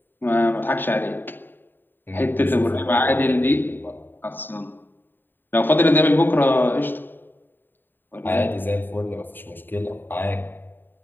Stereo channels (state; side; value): late; right; 0.093 ms